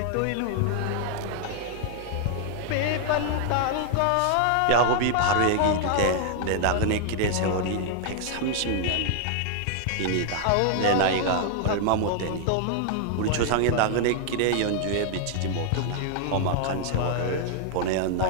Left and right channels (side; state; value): both; different; correlation 0.00